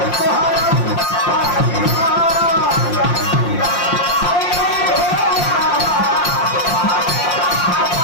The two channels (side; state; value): right; late; 5.7 ms